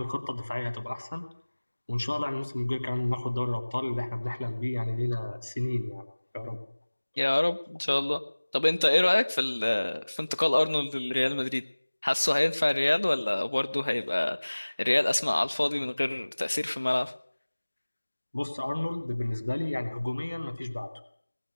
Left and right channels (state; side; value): inverted; both; correlation -1.00